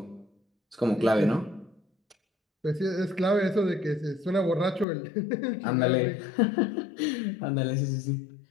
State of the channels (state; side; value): drops out; right; at 4.9 s